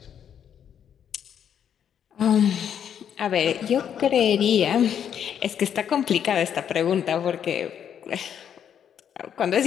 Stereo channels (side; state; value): right; quieter; 8.8 dB